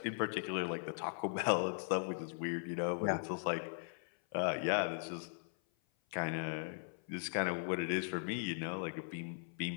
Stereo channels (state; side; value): silent; right; 52 dB below the other